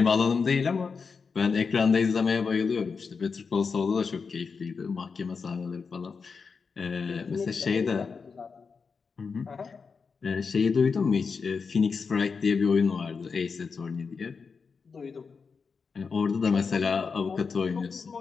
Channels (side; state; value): right; quieter; 5.2 dB